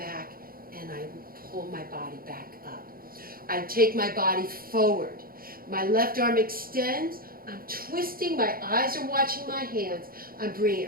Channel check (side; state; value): left; late; 0.42 ms